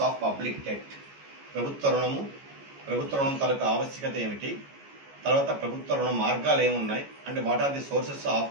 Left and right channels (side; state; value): left; late; 14 ms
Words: of public debt. ప్రభుత్వ రుణం తాలూకు ఆవశ్యకత ఏమిటి, తర్వాత ప్రభుత్వ రుణ మార్గాలు ఏమున్నాయి అంటే what are the sources